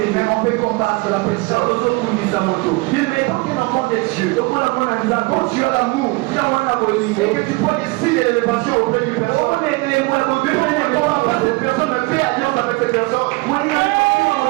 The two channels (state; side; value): quieter; left; 25.0 dB